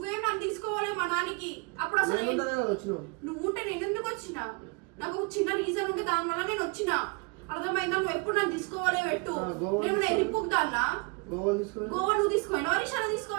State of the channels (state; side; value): quieter; left; 30.0 dB